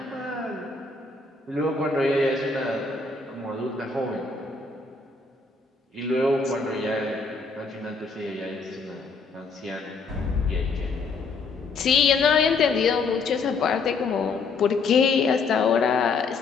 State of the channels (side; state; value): right; quieter; 4.4 dB